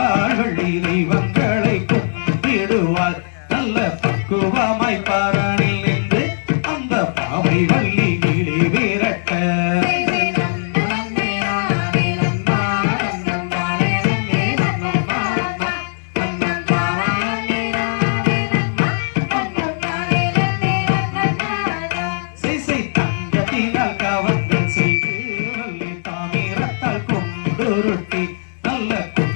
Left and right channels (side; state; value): right; silent; digital silence